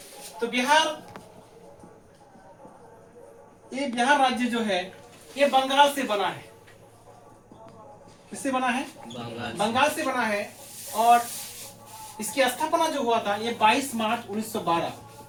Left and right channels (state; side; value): identical; both; correlation 1.00